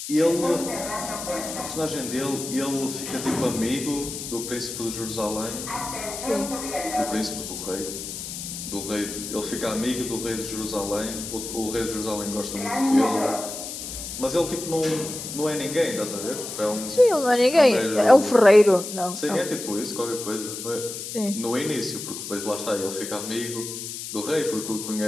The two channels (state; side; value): noise; left; hiss, 8 dB below the sound